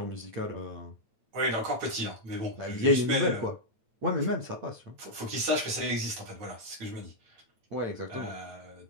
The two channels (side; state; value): left; late; 9.1 ms